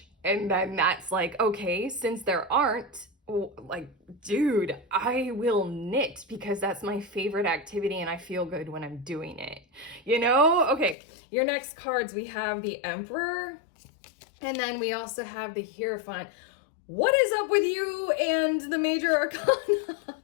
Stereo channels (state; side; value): drops out; right; at 11.0 s